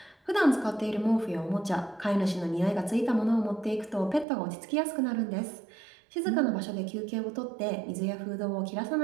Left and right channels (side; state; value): left; drops out; at 4.2 s